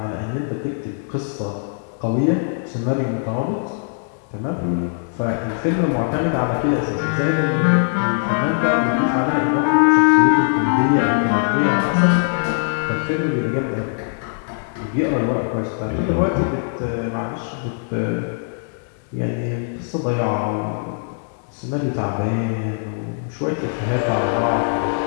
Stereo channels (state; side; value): silent; right; digital silence